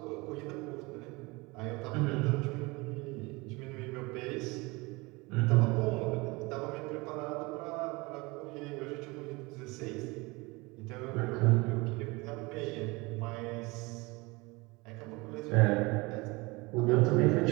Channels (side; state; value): left; quieter; 24.5 dB